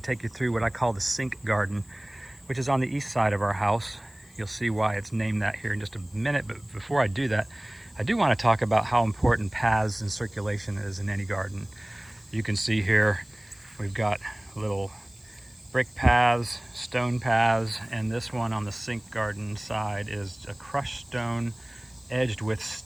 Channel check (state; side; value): noise; left; hiss, 29 dB below the sound